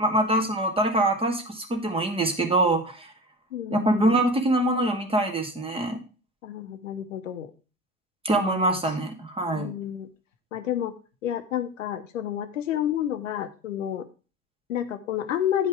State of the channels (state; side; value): normal; both; correlation 0.32